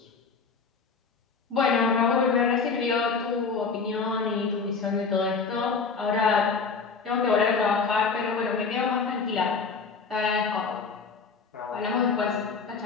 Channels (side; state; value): right; quieter; 5.0 dB